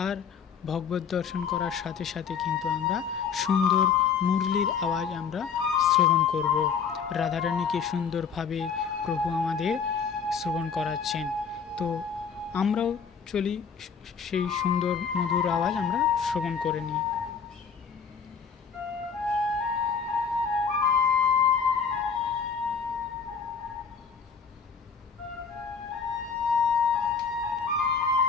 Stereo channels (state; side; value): quieter; right; 6.3 dB